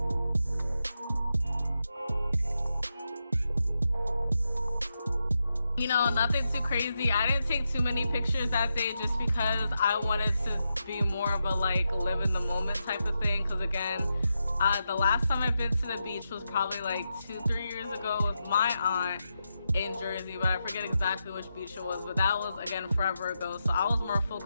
You know, nothing too crazy. I didn't take too many pictures that day just because I wanted to be more of a like live in the moment type of thing. Because again, the last time I've been to the beach was probably like 2-3 years ago with my aunt in Jersey, but I forget exactly which beach it was, but that was again forever ago. So I was more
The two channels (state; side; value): inverted; both; correlation -0.86